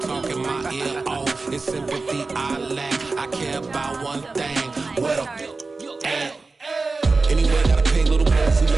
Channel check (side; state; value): left; quieter; 3.8 dB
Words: my ear off. It's sympathy I lack. I care about one thing. What up? Anyway, gotta pay a little more if we